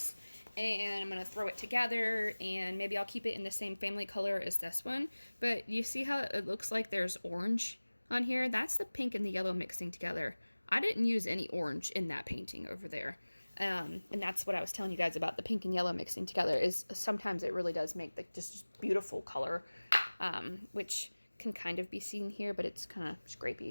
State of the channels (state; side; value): inverted; both; correlation -1.00